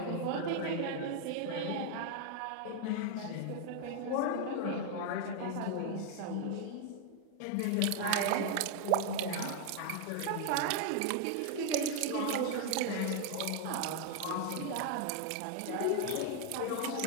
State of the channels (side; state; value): both; different; correlation 0.00